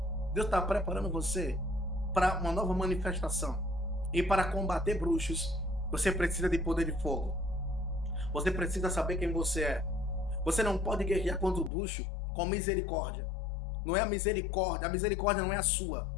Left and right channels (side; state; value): right; drops out; at 11.7 s